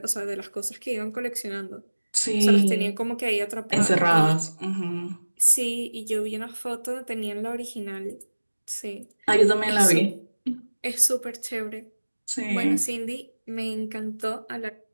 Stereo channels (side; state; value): both; inverted; correlation -1.00